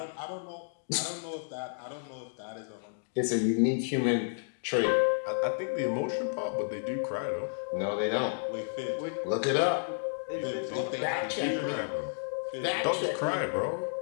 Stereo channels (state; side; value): silent; right; digital silence